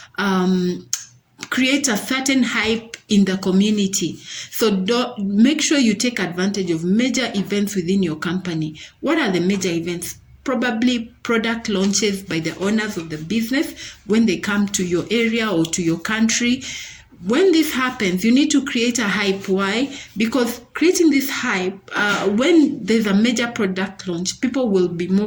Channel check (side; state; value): both; identical; correlation 1.00